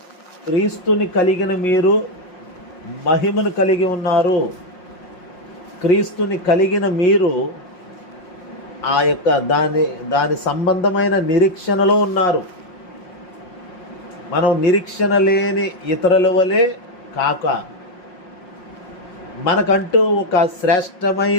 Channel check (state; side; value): late; right; 5.6 ms